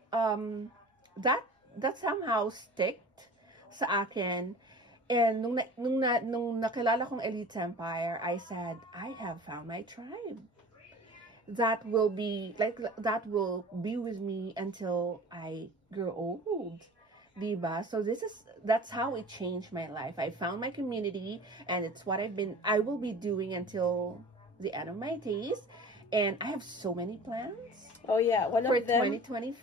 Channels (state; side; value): normal; both; correlation 0.41